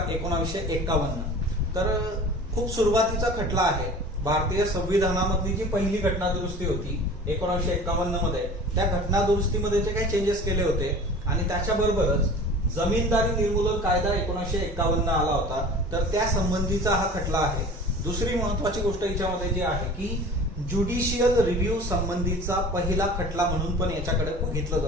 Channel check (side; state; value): both; normal; correlation 0.40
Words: 1951। तर खूप सुरुवातीचा खटला आहे। भारतीय संविधानामधली जी पहिली घटना दुरुस्ती होती 1951 मध्ये, त्या घटना दुरुस्तीमध्ये जे काही चेंजेस केले होते आणि त्याच्याबरोबरच जमीनदारी निर्मूलन कायदा 1951 आला होता, तर त्या संबंधीचा हा खटला आहे। दुसरी महत्वाची गोष्ट याच्यामध्ये जी आहे की ज्युडिशियल रिव्ह्यू संबंधीचा पहिला खटला म्हणून पण याच्याकडे बघितलं